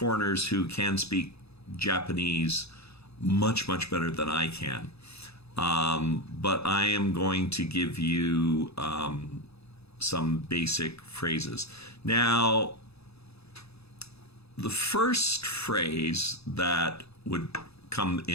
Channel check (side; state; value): right; late; 0.79 ms